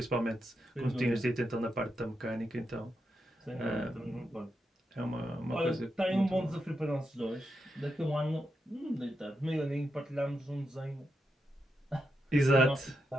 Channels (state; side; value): normal; both; correlation 0.85